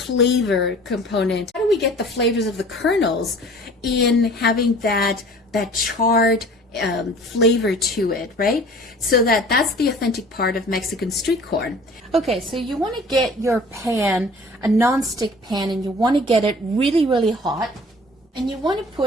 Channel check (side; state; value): both; normal; correlation 0.47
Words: component? How do we get the flavors of the kernels in having that charred flavor to it, right? So that's the authentic part of Mexican street corn. Okay, so you want to get your pan, a non-stick pan, and you want to get it really, really hot. And you want to